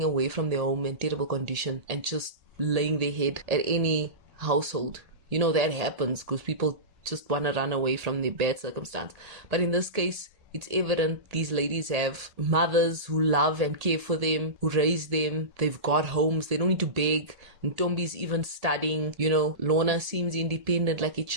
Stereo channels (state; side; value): late; left; 1.8 ms